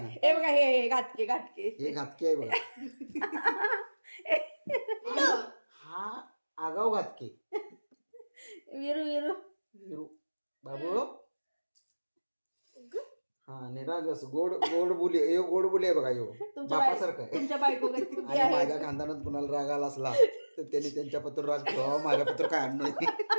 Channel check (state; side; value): inverted; both; correlation -1.00